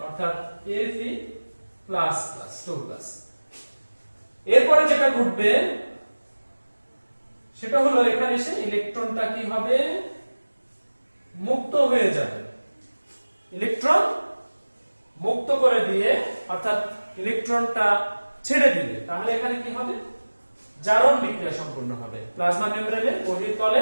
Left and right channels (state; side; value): inverted; both; correlation -1.00